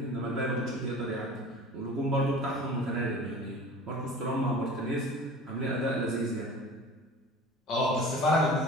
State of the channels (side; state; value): both; normal; correlation 0.40